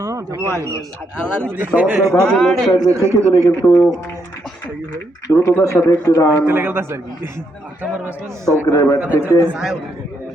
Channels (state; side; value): normal; both; correlation 0.77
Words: থেকে দিলে কিন্তু দ্রুততার সাথে একটি রান তৌকিরের ব্যাট থেকে